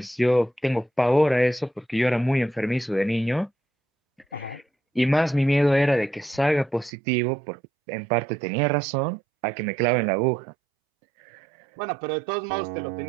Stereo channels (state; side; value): drops out; left; at 6.9 s